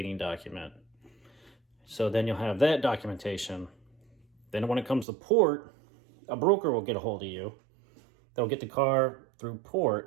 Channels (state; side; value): drops out; left; at 5.1 s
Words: document. So then you'll have that documentation. Then when it comes to port, a broker will get a hold of you. They'll get the car through